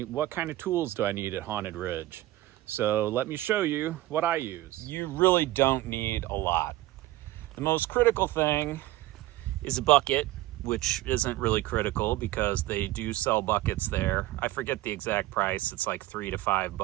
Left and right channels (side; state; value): left; quieter; 16.6 dB